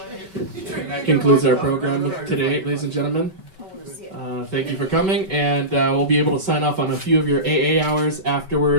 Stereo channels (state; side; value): late; left; 5.2 ms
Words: That concludes our program today, ladies and gentlemen. Thank you for coming, and we'll be able to sign off on a few of your AA hours